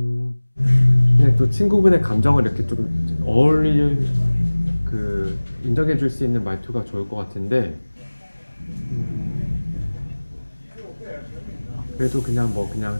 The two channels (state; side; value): inverted; both; correlation -1.00